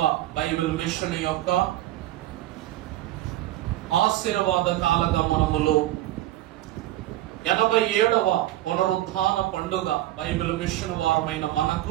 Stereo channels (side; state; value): left; quieter; 15.0 dB